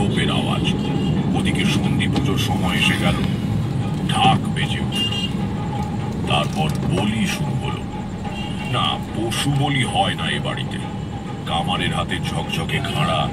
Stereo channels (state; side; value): identical; both; correlation 1.00